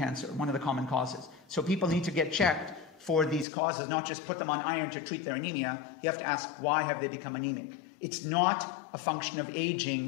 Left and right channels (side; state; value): right; drops out; at 3.5 s